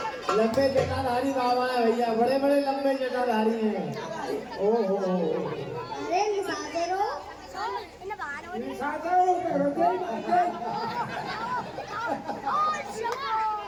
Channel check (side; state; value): both; identical; correlation 1.00